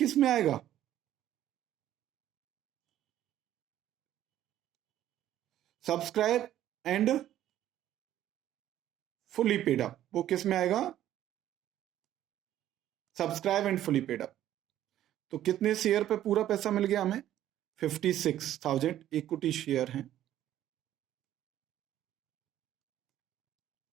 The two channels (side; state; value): left; quieter; 12.3 dB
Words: में आएगा, subscribe and fully paid up, वो किस में आएगा, subscribe and fully paid up. तो कितने शेयर पे पूरा पैसा मिल गया हमें, 56,000 इक्विटी शेयर हैं,